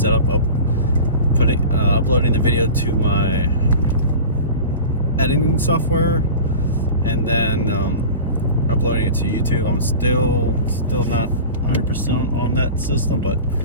of uploading the video to my editing software and then uploading it to YouTube. I'm still not 100% on that system, but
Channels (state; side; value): inverted; both; correlation -0.35